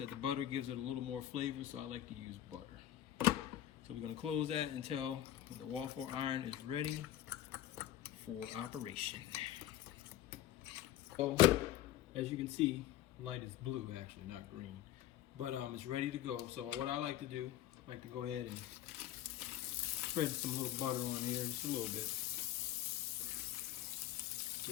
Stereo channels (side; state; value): right; quieter; 12.8 dB